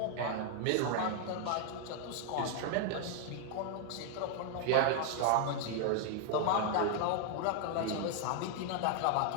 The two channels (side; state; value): both; different; correlation 0.00